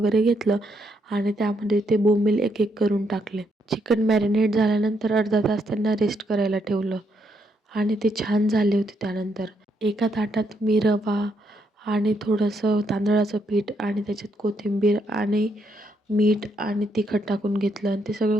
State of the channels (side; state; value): both; normal; correlation 0.76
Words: घेतलं आणि त्यामध्ये ते बोंबील एक एक करून टाकले. चिकन मॅरिनेट झाल्यानंतर अर्धा तास त्यांना रेस्ट करायला ठेवलं आणि ते छान झाले होते. त्यानंतर एका ताटात मी रवा आणि थोडंसं तांदळाचं पीठ आणि त्याच्यात कोथिंबीर आणि मीठ आणि तिखट टाकून घेतलं आणि ते सगळं